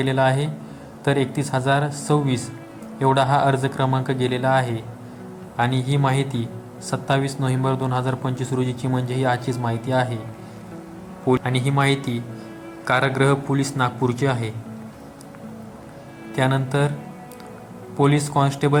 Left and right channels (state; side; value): identical; both; correlation 1.00